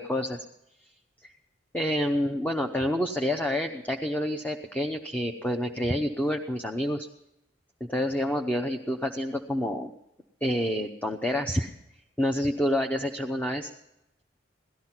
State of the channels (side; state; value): both; normal; correlation 0.78